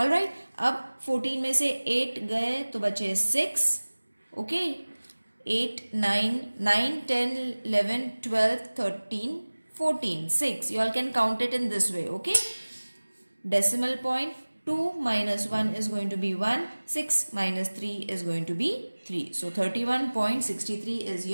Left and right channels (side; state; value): both; inverted; correlation -1.00